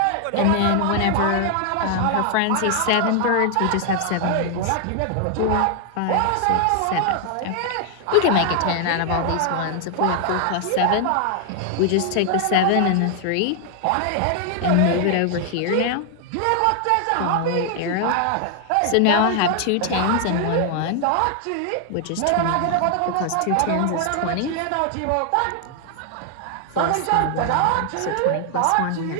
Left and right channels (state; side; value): different; both; correlation 0.00